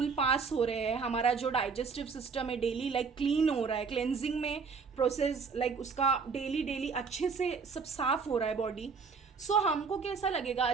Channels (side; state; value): left; quieter; 5.3 dB